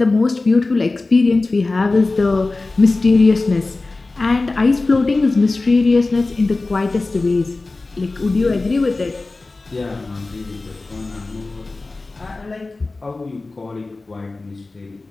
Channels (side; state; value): right; quieter; 3.4 dB